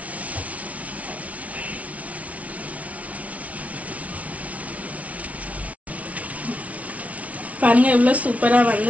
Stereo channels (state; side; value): late; left; 0.067 ms